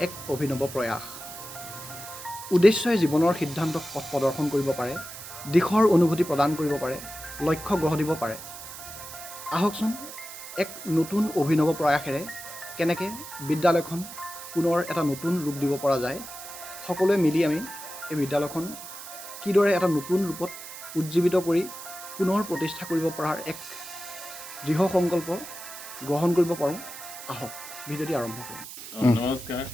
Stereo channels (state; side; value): noise; right; hiss, 12 dB below the sound